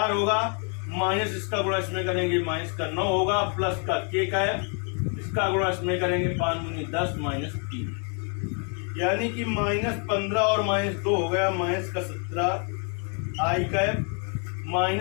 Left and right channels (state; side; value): quieter; right; 39.6 dB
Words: होगा, माइनस इसका गुणा इसमें करेंगे माइनस का 9 होगा, प्लस का के कैप इसका गुणा इसमें करेंगे 5 दूनी 10 माइनस 3, यानी कि माइनस 15 और माइनस 2 हो गया, माइनस का 17 आई कैप,